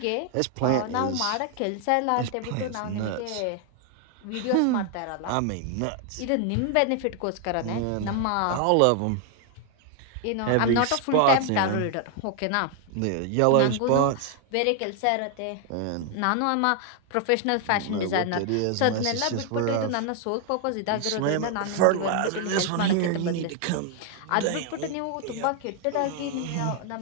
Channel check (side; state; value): both; different; correlation 0.00